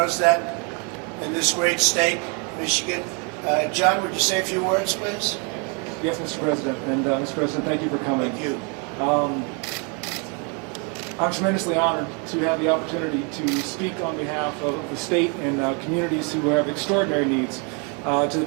that in this great state, Michigan. John, would you say a few words, please? Yes, Mr. President. And Mr. President, thank you for coming. Thank you. I'm tremendously honored to have the opportunity to speak on behalf of the state and communities who have extraordinary needs to the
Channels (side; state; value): left; quieter; 35.3 dB